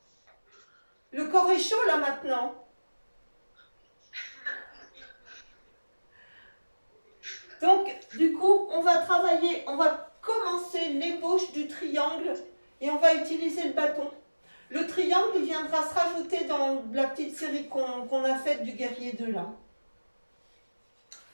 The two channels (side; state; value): both; inverted; correlation -1.00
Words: Le corps est chaud là maintenant. Donc, du coup, on va travailler, on va commencer l'ébauche du triangle et on va utiliser le bâton. Le triangle, il viendra se rajouter dans la petite série qu'on a faite du guerrier 2 là.